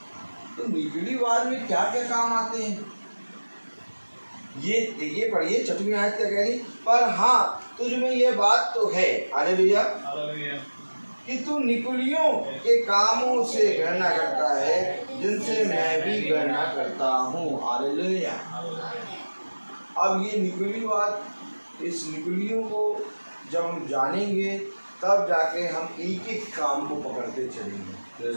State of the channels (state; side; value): inverted; both; correlation -1.00